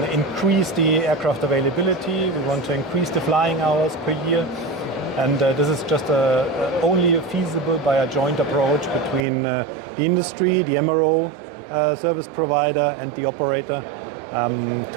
increase the aircraft availability, we want to increase the flying hours per year. And this is just only feasible by a joint approach between the industry, the MRO service provider, and the operator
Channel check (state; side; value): drops out; left; at 9.2 s